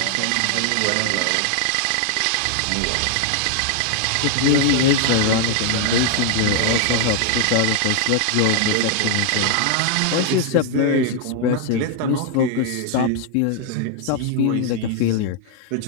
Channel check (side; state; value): both; different; correlation 0.00